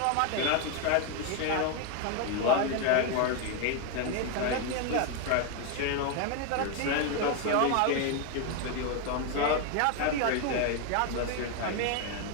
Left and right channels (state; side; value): different; both; correlation 0.01